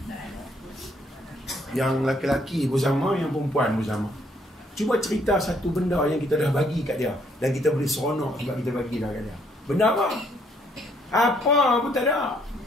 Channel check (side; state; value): both; normal; correlation 0.68